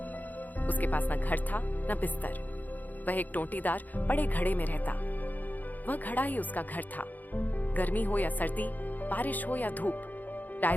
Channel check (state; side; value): late; right; 0.083 ms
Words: उसके पास न घर था, न बिस्तर। वह एक टोंटीदार बड़े घड़े में रहता। वह घड़ा ही उसका घर था। गर्मी हो या सर्दी, बारिश हो या धूप,